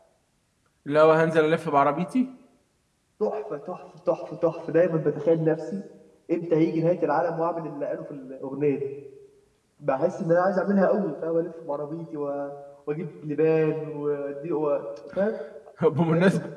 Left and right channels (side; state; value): both; identical; correlation 1.00